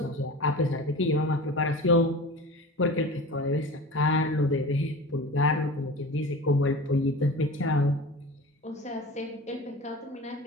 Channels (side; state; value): both; normal; correlation 0.34